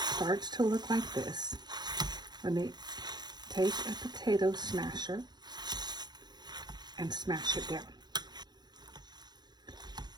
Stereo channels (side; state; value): left; late; 0.20 ms